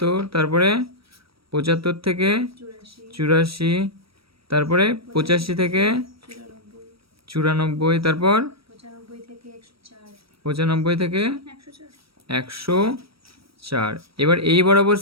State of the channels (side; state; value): left; late; 0.76 ms